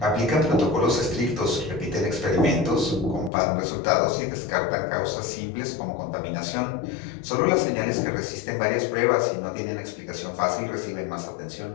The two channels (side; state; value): right; drops out; at 3.3 s